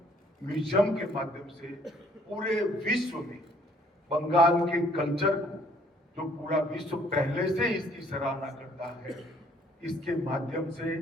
म्यूजियम के माध्यम से पूरे विश्व में बंगाल के कल्चर को, जो पूरा विश्व पहले से इसकी सराहना करता है, इसके माध्यम से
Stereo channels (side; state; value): both; normal; correlation 0.61